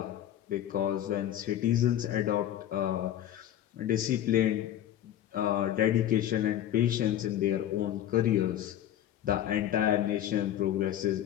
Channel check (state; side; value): quieter; right; 11.6 dB